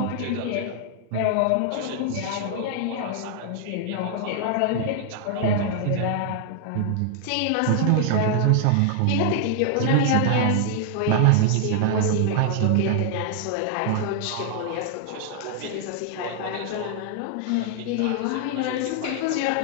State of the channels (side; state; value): both; different; correlation 0.00